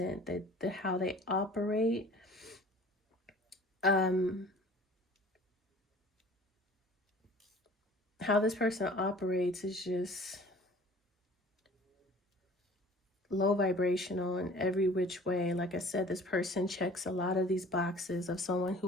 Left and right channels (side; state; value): both; normal; correlation 0.47